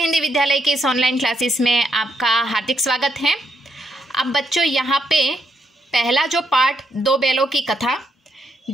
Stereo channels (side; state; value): both; normal; correlation 0.77